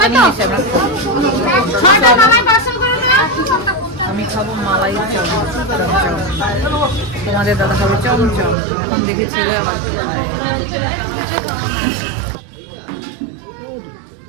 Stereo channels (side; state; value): left; drops out; at 8.6 s